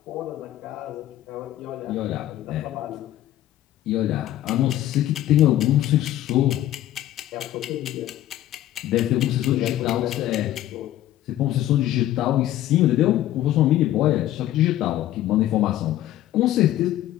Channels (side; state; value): right; quieter; 13.4 dB